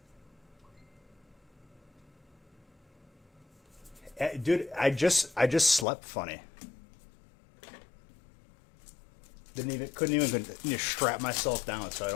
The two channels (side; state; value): right; drops out; at 5.9 s